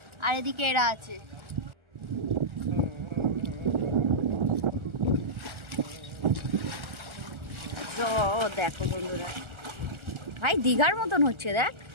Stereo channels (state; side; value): late; left; 1.4 ms